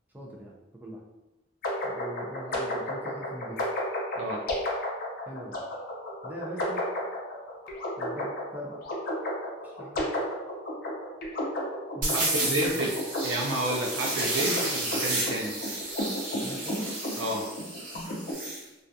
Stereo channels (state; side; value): normal; both; correlation 0.16